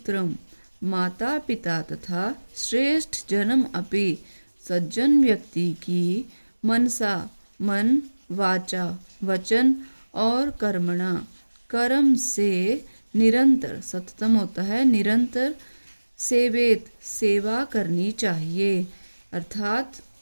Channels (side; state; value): both; inverted; correlation -1.00